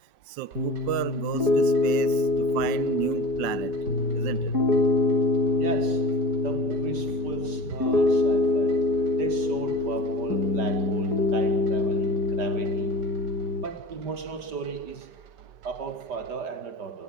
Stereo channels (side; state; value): left; late; 5.6 ms